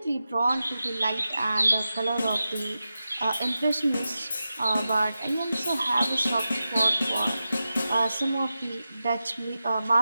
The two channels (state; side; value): inverted; both; correlation -0.92